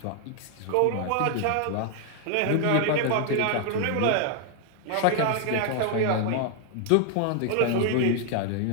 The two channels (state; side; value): different; both; correlation 0.00